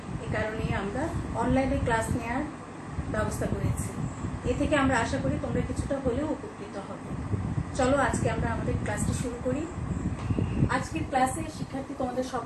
এই কারণেই আমরা অনলাইনে ক্লাস নেওয়ার ব্যবস্থা করেছি। এ থেকে আমরা আশা করি তোমরা কিছুটা হলেও উপকৃত হবে। চলো আজকে আমরা আমাদের ক্লাসটি শুরু করি। আজকের ক্লাসে শিক্ষার্থী তোমাদের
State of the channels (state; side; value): identical; both; correlation 1.00